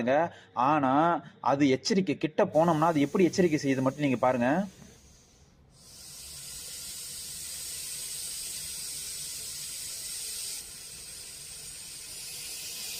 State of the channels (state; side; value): identical; both; correlation 1.00